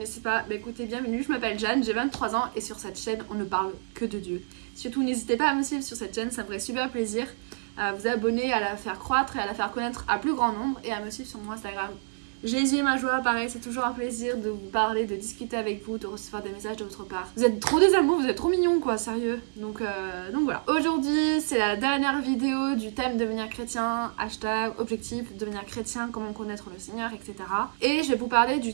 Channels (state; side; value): silent; left; digital silence